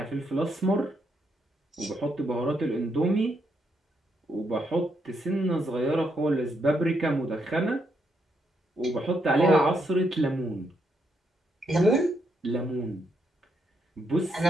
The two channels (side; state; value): both; normal; correlation 0.78